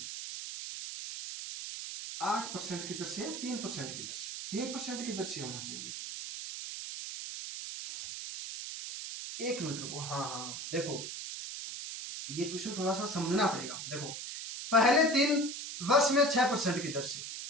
8% की दर से 3% की दर से 3% की दर से होना चाहिए। एक मिनट रुको, हाँ देखो ये क्वेश्चन थोड़ा सा समझना पड़ेगा। देखो पहले 3 वर्ष में 6% की दर से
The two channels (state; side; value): noise; right; hiss, 7 dB below the sound